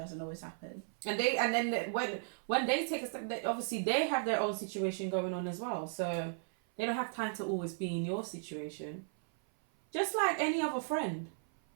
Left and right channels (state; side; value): silent; left; 54 dB below the other